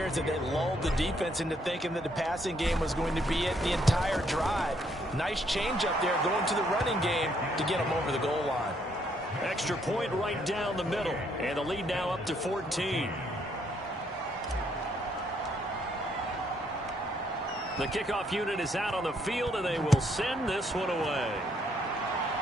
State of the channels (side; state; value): both; normal; correlation 0.70